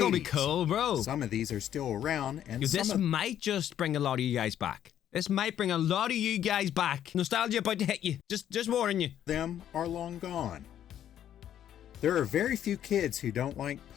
be cool, bro. Some of these are still around, and this might just bring a lot of you guys back. This might bring a lot of you guys back. Nostalgia about to hit you. Just warning you. Them are long gone. There are very few kids who don't like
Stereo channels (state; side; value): quieter; right; 10.7 dB